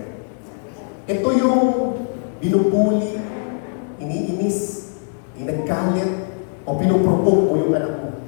Ito yung binubuli, iniinis, ginagalit, o pinuprovoke mo yung anak mo.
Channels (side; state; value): right; silent; 65 dB below the other